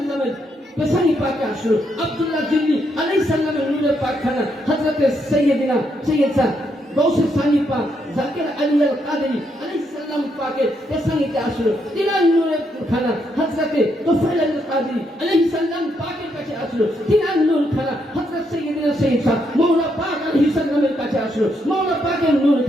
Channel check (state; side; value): normal; both; correlation 0.77